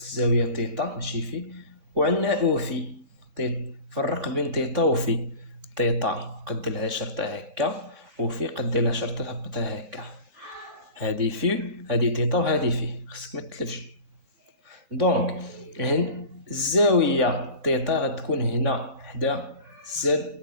تيتا ماشي في، وعندنا او في تيتا. فرق بين تيتا وفي. تيتا قد لها شرطه هكا، وفي قد لها شرطه هبطها هكا. هادي في، هادي تيتا، وهادي في، خصك ما تتلفش. دونك الزاويه تيتا غتكون هنا حدا زد،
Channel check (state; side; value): late; left; 3.6 ms